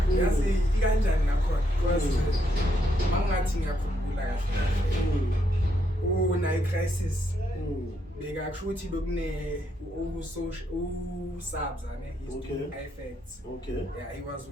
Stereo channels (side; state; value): both; normal; correlation 0.76